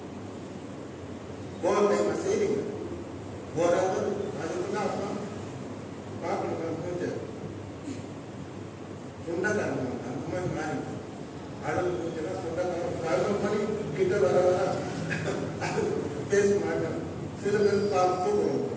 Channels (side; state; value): both; identical; correlation 1.00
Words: ஓவர் டைம் செய்றீங்க. ஓராவது அதுக்குதான் அப்புறம் பார்க்கணும். மூஞ்ச சொந்தக்காரங்க அந்த மாதிரி மாறி அழகு மூஞ்செல்லாம் சொந்தக்காரங்க 11 மணி கிட்ட வர அது பேச மாட்டேன். சில பேர்